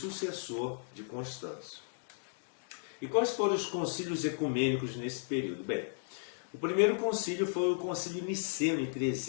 de Constâncio. E quais foram os concílios ecumênicos nesse período? Bem, o primeiro concílio foi o concílio niceno, em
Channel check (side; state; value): right; silent; digital silence